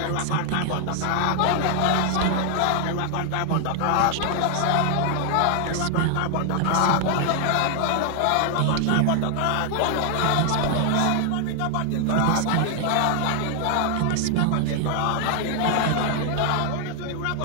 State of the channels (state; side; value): different; both; correlation 0.00